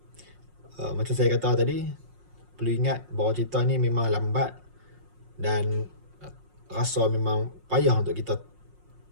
macam saya kata tadi, perlu ingat bahawa cerita ni memang lambat dan rasa memang payah untuk kita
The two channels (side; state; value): left; late; 5.5 ms